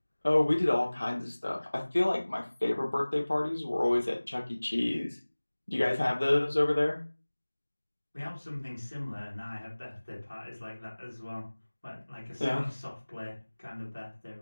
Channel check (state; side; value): inverted; both; correlation -1.00